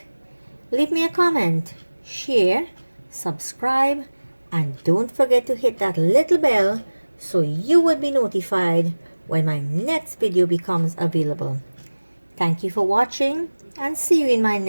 leave me a comment, share, subscribe, and don't forget to hit that little bell so you will be notified when my next video becomes available. Thank you for watching and see you in my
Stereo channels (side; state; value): both; inverted; correlation -1.00